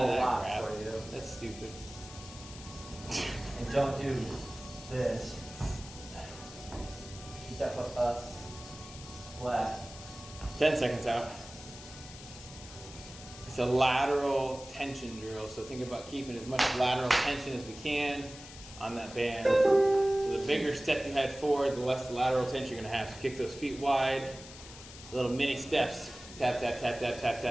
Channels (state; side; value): noise; left; hiss, 15 dB below the sound